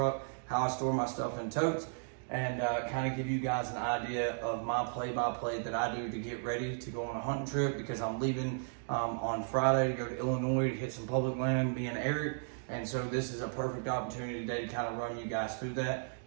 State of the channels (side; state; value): left; silent; digital silence